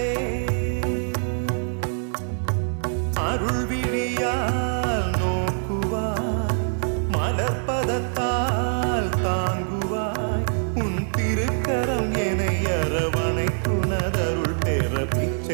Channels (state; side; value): silent; left; 62 dB below the other